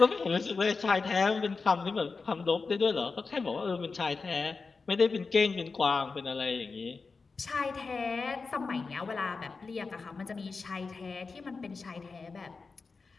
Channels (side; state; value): right; quieter; 4.4 dB